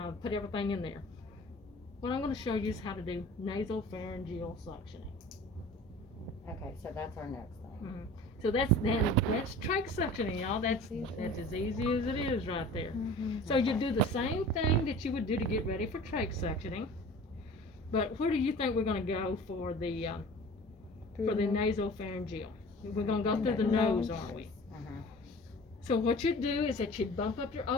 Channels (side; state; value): both; normal; correlation 0.42